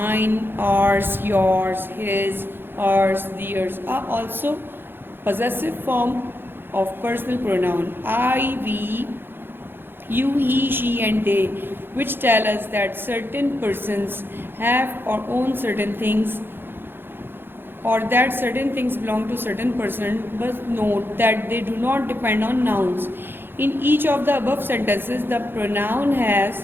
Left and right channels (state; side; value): late; left; 0.10 ms